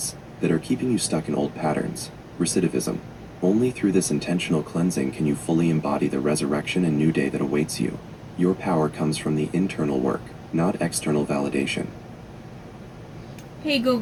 that are keeping you stuck in old patterns. Recidivism. Only through this intentional cleansing can you fully embody the resurrection and new day that awaits you. Your power comes from the internal work, not external validation. Hey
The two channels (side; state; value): both; identical; correlation 1.00